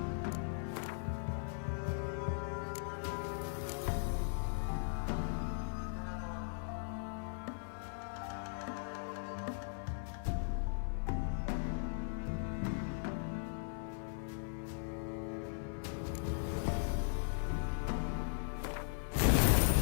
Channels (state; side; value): silent; right; 52 dB below the other